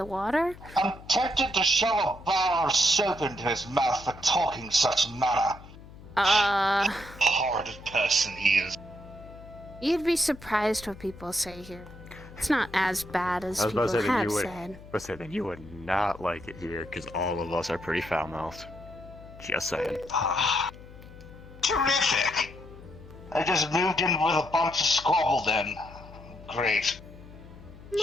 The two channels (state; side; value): noise; left; hum, 18 dB below the sound